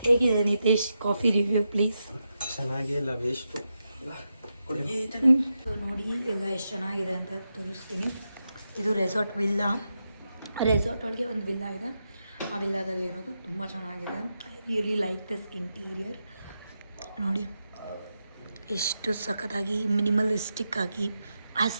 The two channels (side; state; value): both; inverted; correlation -0.87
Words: ಹೇಗಿದೆ ನಿತೇಶ್ ಕಾಫಿ ರಿವ್ಯೂ ಪ್ಲೀಸ್? ಚೆನ್ನಾಗಿಲ್ಲ, ವೇಸ್ಟು. ಸೊ ನೋಡಿ ಎಲ್ಲ ಎಷ್ಟು ಚೆನ್ನಾಗಿದೆ ಅಂತ ತೋರಿಸ್ತೀನಿ. ಇದು ರೆಸಾರ್ಟ್ ವಿಲ್ಲಾ. ರೆಸಾರ್ಟ್ ಒಳಗೆ ಒಂದು ವಿಲ್ಲಾ ಇದೆ. ಆ ವಿಲ್ಲಾದಲ್ಲಿರೋದು ತುಂಬ ಚೆನ್ನಾಗಿದೆ. I really like this interior. ನೋಡಿ ಎಷ್ಟು ಸಖತ್ತಾಗಿ ಮಿನಿಮಲಿಸ್ಟಿಕ್ ಆಗಿ